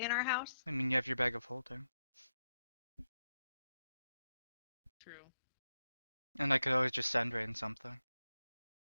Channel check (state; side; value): inverted; both; correlation -0.85